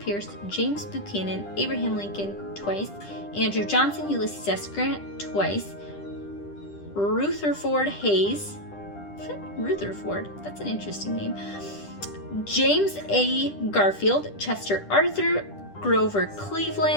James Buchanan, Abraham Lincoln twice, Andrew Johnson, Ulysses S. Grant twice, Rutherford Hayes, Rutherford, that's an interesting name, James A. Garfield, Chester Arthur, Grover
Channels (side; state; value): right; late; 10 ms